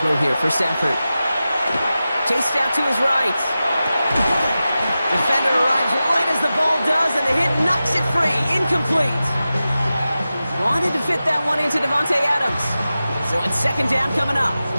here for Stafford. Chased out to his right. Defender arrives right as the ball does, and the hit knocks it free. Incomplete. Wanted to fit that one into Devontae Adams. So it's second down coming up.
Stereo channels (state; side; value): inverted; both; correlation -0.94